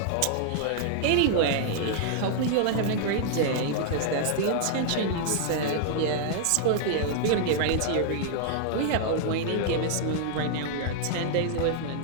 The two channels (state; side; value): different; both; correlation -0.01